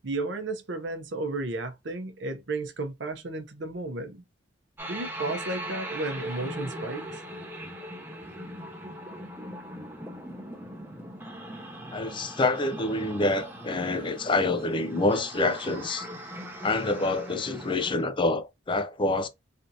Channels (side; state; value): both; normal; correlation 0.23